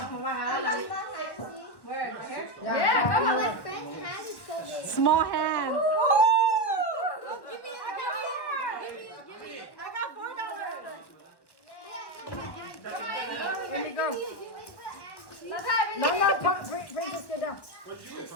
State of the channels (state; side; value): late; right; 1.1 ms